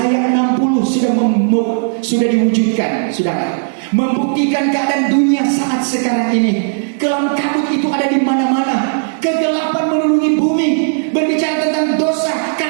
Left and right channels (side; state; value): left; silent; digital silence